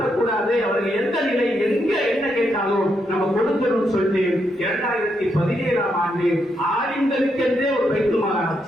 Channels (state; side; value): normal; both; correlation 0.80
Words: அவர்கள் எந்த நிலை எங்க என்ன கேட்டாலும் நம்ம கொடுக்கணும்னு சொல்லிட்டு 2017ஆம் ஆண்டு ஆலிம்களுக்கென்றே ஒரு பைத்துல் மால்